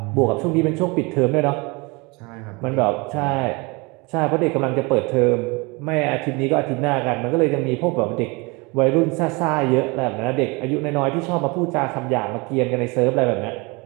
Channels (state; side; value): quieter; left; 27.2 dB